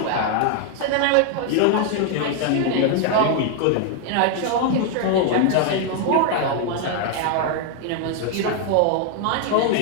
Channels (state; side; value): different; both; correlation 0.00